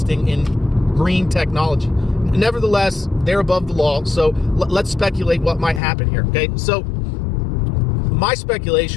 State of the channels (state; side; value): drops out; right; at 5.8 s